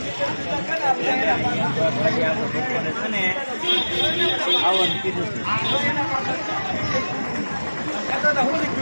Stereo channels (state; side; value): inverted; both; correlation -1.00